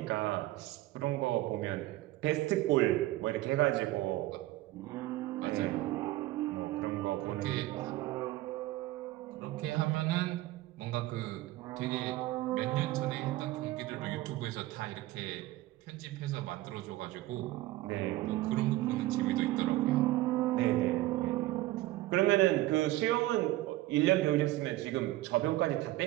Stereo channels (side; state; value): left; quieter; 17.1 dB